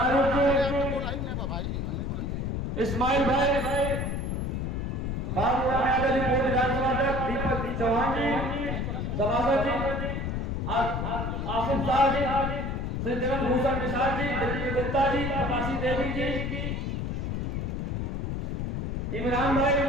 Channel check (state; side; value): noise; left; rumble, 2 dB below the sound